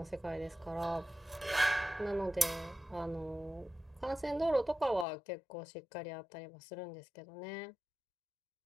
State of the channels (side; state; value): right; drops out; at 5.1 s